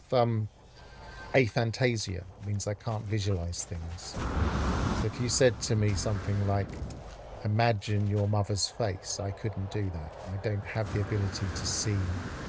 aphantasia. It means I can't visualize things. So if you said to me something like, imagine your mother's face, I couldn't do that. I don't have the ability to see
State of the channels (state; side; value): identical; both; correlation 1.00